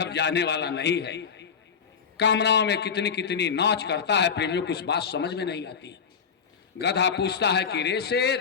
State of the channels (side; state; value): right; quieter; 6.5 dB